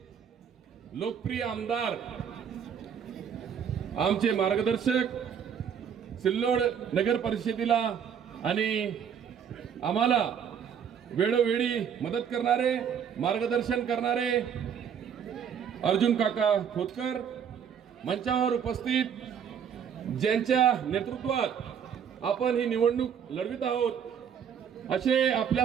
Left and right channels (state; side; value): quieter; left; 7.9 dB